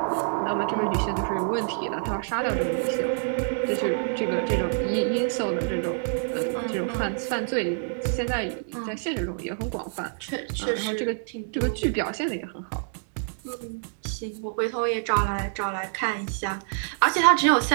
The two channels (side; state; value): left; silent; digital silence